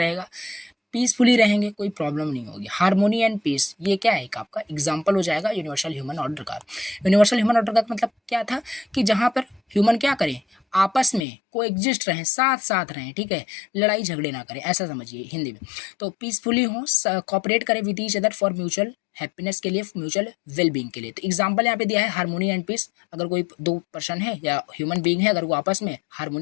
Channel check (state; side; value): drops out; right; at 11.2 s